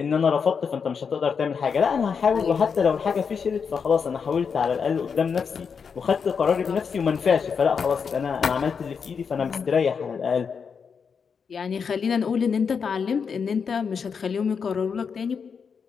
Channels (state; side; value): quieter; right; 6.1 dB